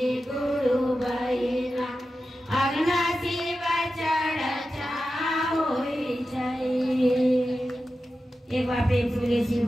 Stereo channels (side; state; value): both; normal; correlation 0.92